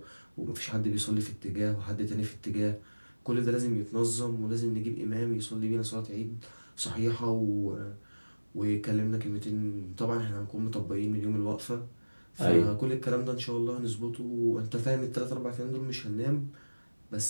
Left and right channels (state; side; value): inverted; both; correlation -1.00